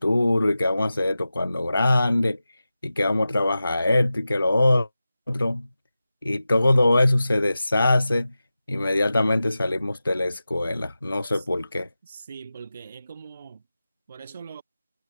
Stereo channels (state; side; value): inverted; both; correlation -0.94